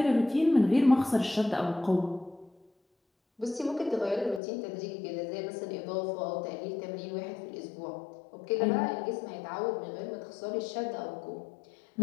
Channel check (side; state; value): right; drops out; at 4.4 s